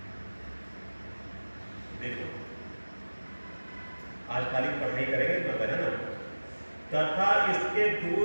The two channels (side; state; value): both; inverted; correlation -1.00